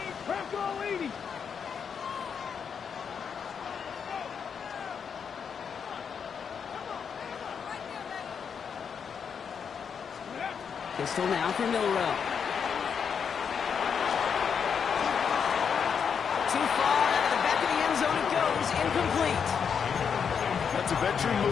Bronco 80. Pistol now for Milroe. Too far out of the back of the end zone it goes. Incomplete. That's a veteran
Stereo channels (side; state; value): right; quieter; 6.8 dB